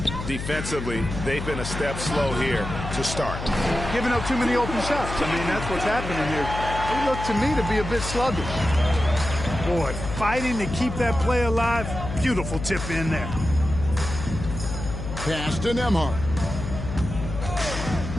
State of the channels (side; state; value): left; noise; hum, 7 dB below the sound